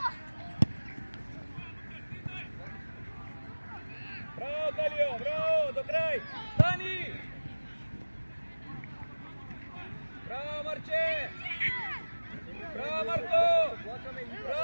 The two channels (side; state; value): both; inverted; correlation -1.00